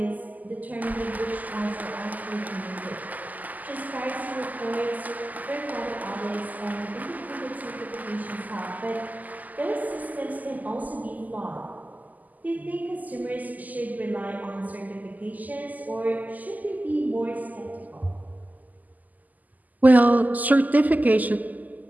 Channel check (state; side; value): late; left; 0.080 ms